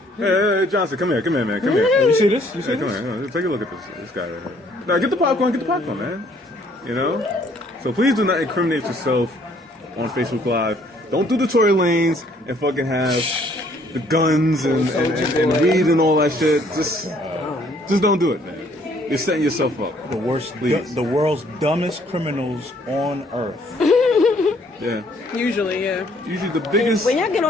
Hey, Johnson, come here, man, come here. You see this? Come here, take a look at this guy right here. Now get the popcorn, man. You know? So please do not incriminate yourself on Facebook Live. Don't do the Tory Lanes and fucking have the guns and weed and all that shit. Just don't do it, man. You're setting yourself up. The world's dumbest criminals on earth. Yeah. Usually, yeah. Usually the biggest. When y'all get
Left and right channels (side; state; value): both; normal; correlation 0.63